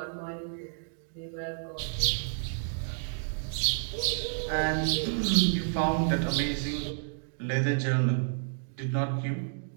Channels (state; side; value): silent; left; digital silence